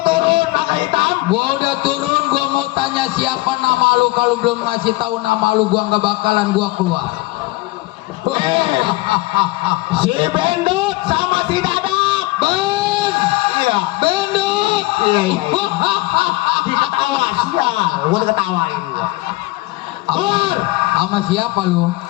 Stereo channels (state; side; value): quieter; right; 20.2 dB